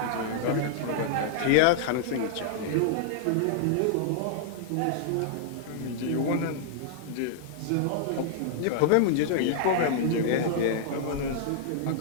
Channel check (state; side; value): different; both; correlation -0.01